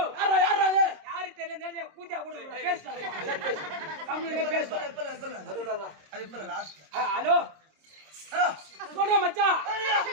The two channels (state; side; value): late; left; 26 ms